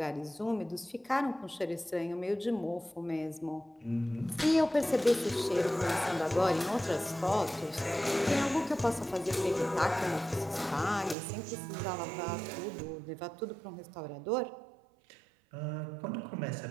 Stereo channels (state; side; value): drops out; left; at 11.2 s